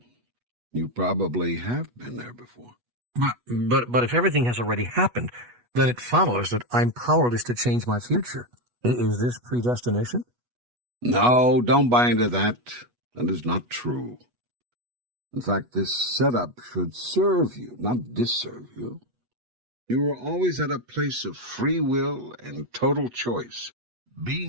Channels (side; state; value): left; late; 8.2 ms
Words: You probably have been there before. But if everything has already happened, then it follows that I'm powerless to change my future. Is this predestination? No, don't buy into that. That is not true. In fact, this setup should serve you, not disserve you. You are always at a place of free will and total choice.